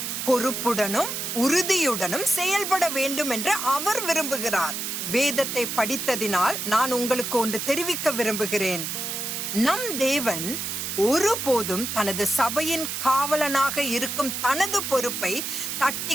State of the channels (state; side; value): noise; right; hiss, 4 dB below the sound